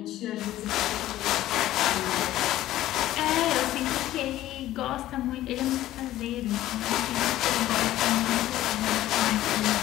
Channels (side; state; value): right; quieter; 14.4 dB